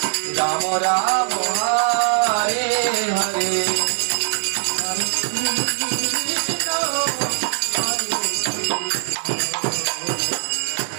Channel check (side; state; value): left; silent; 58 dB below the other